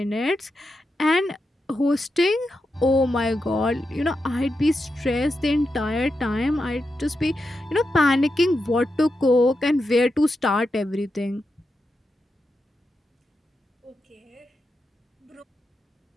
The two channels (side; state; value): both; normal; correlation 0.87